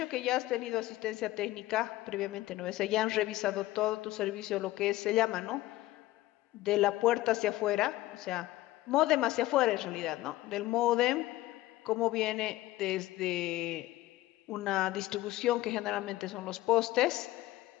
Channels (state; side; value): quieter; right; 16.8 dB